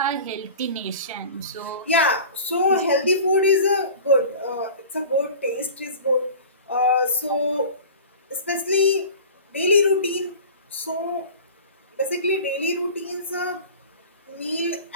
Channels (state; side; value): inverted; both; correlation -0.39